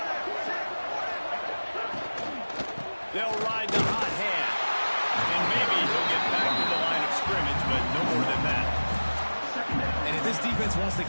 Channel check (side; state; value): both; inverted; correlation -1.00